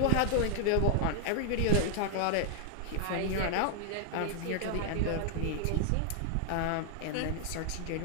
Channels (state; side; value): different; both; correlation 0.00